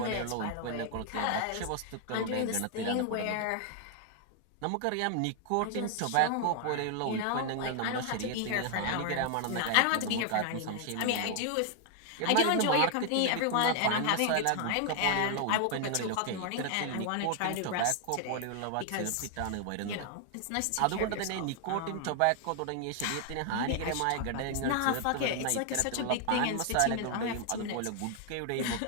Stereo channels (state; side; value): different; both; correlation 0.00